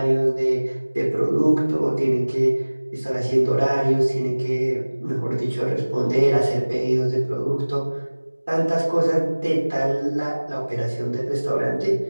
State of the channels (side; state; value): both; inverted; correlation -1.00